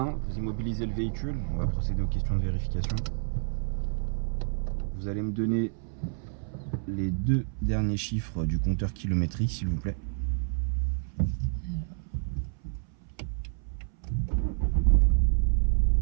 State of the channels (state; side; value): silent; left; 59 dB below the other